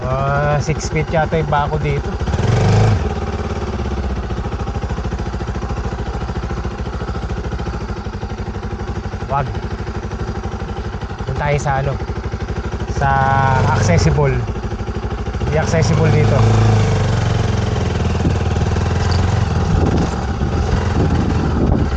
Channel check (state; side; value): identical; both; correlation 1.00